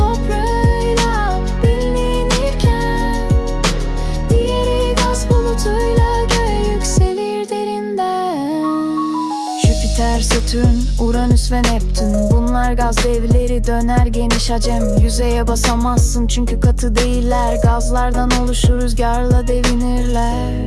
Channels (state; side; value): identical; both; correlation 1.00